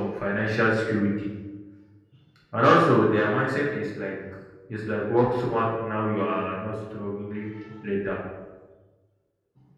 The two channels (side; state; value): both; identical; correlation 1.00